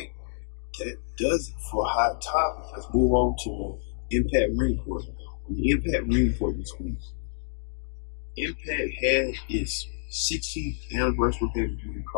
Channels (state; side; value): silent; right; digital silence